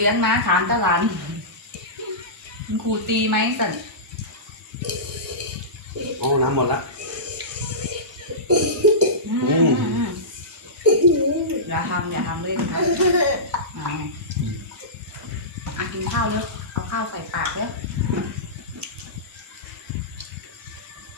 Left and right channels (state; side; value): normal; both; correlation -0.19